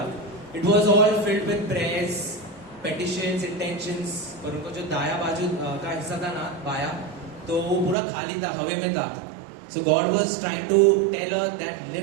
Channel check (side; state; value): left; drops out; at 8.0 s